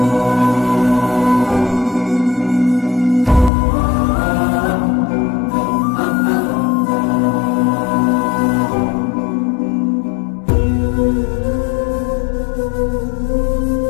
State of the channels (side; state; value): right; drops out; at 3.5 s